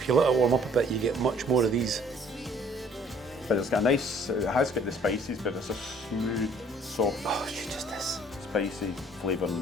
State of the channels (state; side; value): normal; both; correlation 0.57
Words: you let her warm up a bit, you get much more of these. But it's got a nice, it has got the spices, but it's a smooth, soft, She just is. spicy flavour in